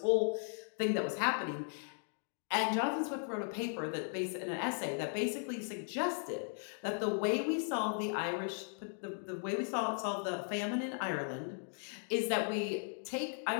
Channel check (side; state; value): right; silent; 53 dB below the other